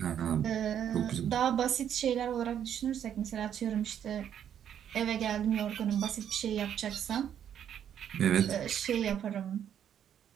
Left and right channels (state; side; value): quieter; left; 9.4 dB